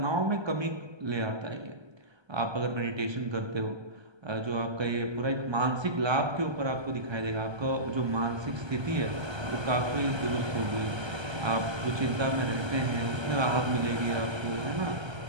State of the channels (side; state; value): left; late; 1.3 ms